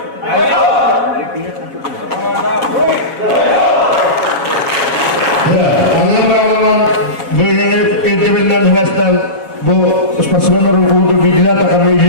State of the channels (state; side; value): late; right; 7.2 ms